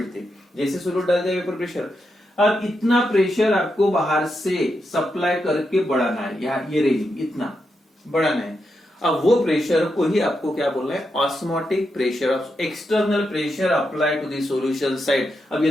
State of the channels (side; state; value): both; normal; correlation 0.85